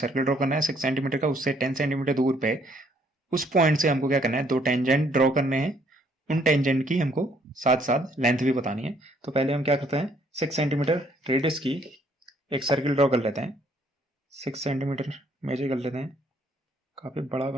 ड्रॉ करना है 6 सेंटीमीटर का, उससे 10 सेंटीमीटर दूर पे उस पॉइंट से हमको क्या करना है, दो टेंजेंट ड्रॉ करने हैं, उन टेंजेंट की हमको साथ साथ लेंथ भी बतानी है। तो पहले हम क्या करते हैं, 6 सेंटीमीटर रेडियस की एक सर्कल ड्रॉ कर लेते हैं, 6 सेंटीमीटर मेजर कर लेते हैं, काफी बड़ा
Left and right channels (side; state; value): both; normal; correlation 0.66